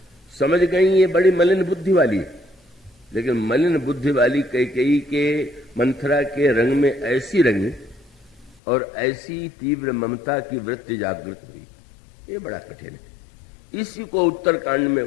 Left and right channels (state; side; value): drops out; right; at 8.6 s